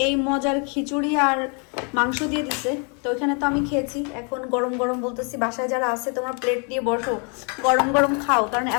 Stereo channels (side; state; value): right; quieter; 36.7 dB